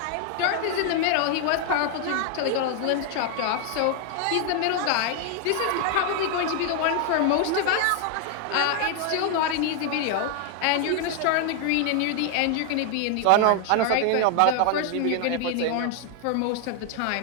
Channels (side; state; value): both; different; correlation 0.00